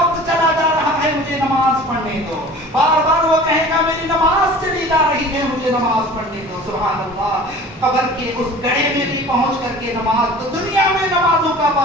چلا جا رہا ہے, مجھے نماز پڑھنے دو. بار بار وہ کہے گا میری نماز چلی جا رہی ہے, مجھے نماز پڑھنے دو. سبحان اللہ, قبر کے اس گڑھے میں بھی پہنچ کر کے نماز, تو دنیا میں نمازوں کا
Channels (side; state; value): both; normal; correlation 0.43